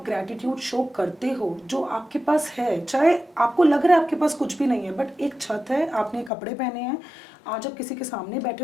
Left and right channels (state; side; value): drops out; right; at 6.3 s